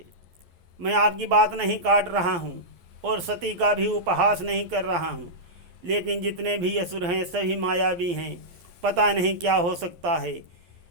मैं आपकी बात नहीं काट रहा हूँ और सती का भी उपहास नहीं कर रहा हूँ, लेकिन जितने भी असुर हैं सभी मायावी हैं, पता नहीं क्या हो सकता है।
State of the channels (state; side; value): late; left; 12 ms